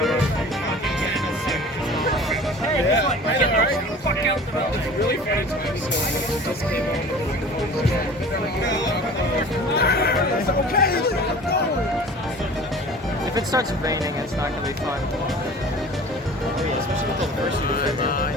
If it starts raining, it's not gonna be fun. Especially with all the first.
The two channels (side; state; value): both; normal; correlation 0.42